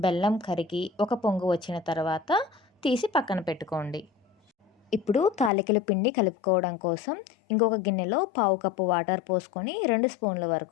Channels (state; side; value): drops out; right; at 5.5 s